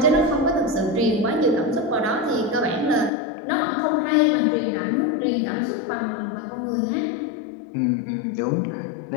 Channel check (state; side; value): drops out; right; at 3.1 s